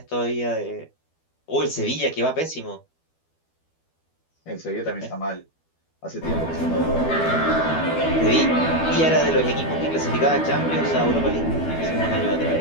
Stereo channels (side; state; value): right; late; 12 ms